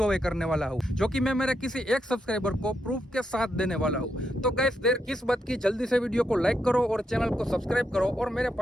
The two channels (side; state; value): both; normal; correlation 0.82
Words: away करने वाला हूँ, जो कि मैं मेरे किसी एक सब्सक्राइबर को प्रूफ के साथ देने वाला हूँ। तो गाइस देर किस बात की, जल्दी से वीडियो को लाइक करो और चैनल को सब्सक्राइब करो और मेरे